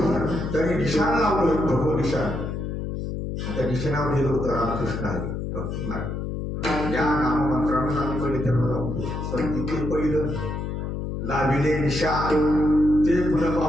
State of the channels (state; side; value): noise; left; hum, 4 dB below the sound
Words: त्यांनी निशाण लावलं, भगव निशाण. त्या निशाणावर लिहिलं होतं रामकृष्ण आहे भक्ती मार्ग. या नाममंत्रानं आम्ही पहिले त्यांना लावतो. पण तिथे पहिलं लाविले निशाण ते पुन्हा